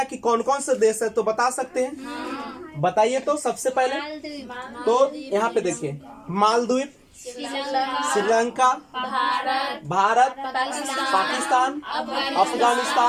कि कौन कौन से देश है तो बता सकते हैं? बताइए तो सबसे पहले। तो यहाँ पे देखिए, मालदीव, श्रीलंका, भारत, पाकिस्तान,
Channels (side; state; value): both; identical; correlation 1.00